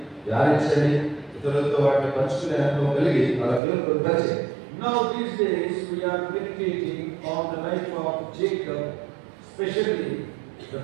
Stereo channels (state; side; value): drops out; left; at 3.6 s